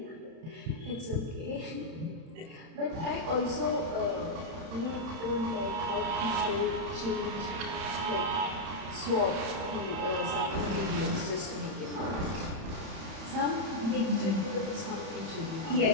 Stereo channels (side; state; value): left; late; 31 ms